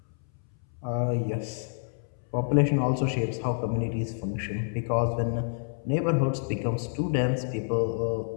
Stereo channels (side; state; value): right; silent; 59 dB below the other